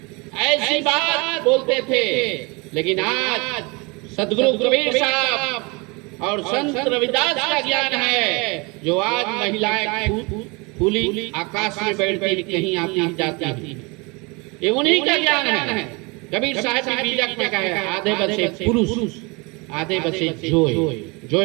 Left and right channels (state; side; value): quieter; left; 28.1 dB